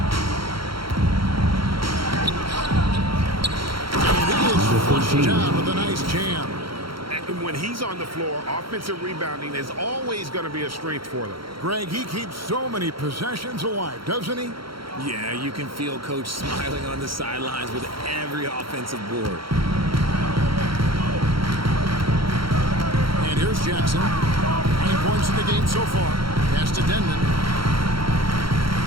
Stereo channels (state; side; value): late; left; 0.74 ms